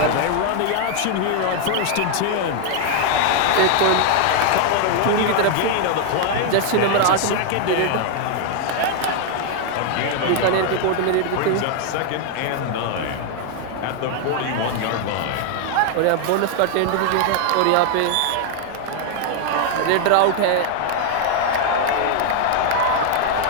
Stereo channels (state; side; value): different; both; correlation 0.00